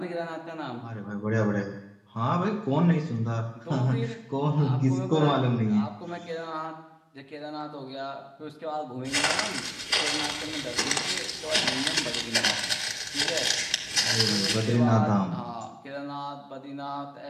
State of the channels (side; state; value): both; identical; correlation 1.00